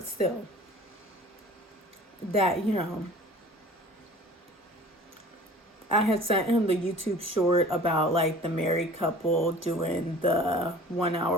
still, that, I had sent him the YouTube short about like the married couple doing the 1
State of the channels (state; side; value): normal; both; correlation 0.45